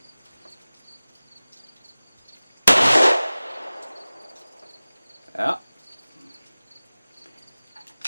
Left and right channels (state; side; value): inverted; both; correlation -0.98